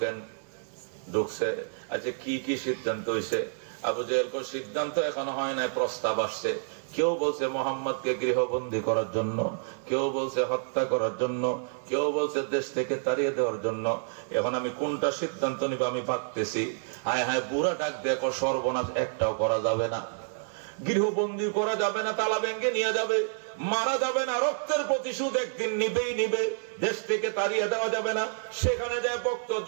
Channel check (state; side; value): silent; left; 59 dB below the other